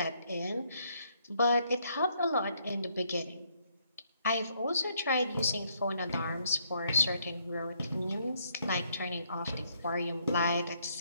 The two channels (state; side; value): inverted; both; correlation -0.71